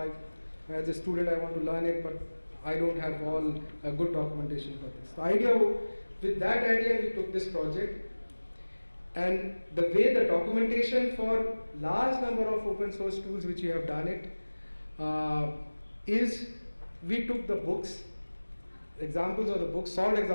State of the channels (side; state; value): both; inverted; correlation -1.00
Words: As a student, I want to learn it, but I don't have all good documentation for this. With that idea, we took this project, and the way the documentation for large number of open source tools which we have done it is we took the books, examples of the books, solved